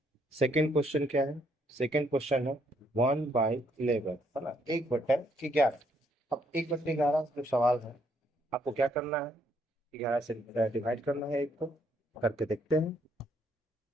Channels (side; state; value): both; normal; correlation 0.70